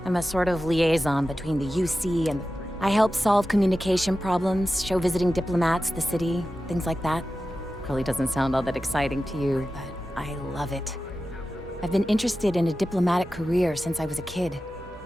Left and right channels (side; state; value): both; normal; correlation 0.93